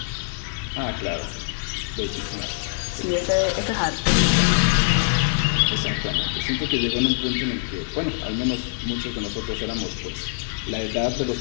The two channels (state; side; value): silent; right; digital silence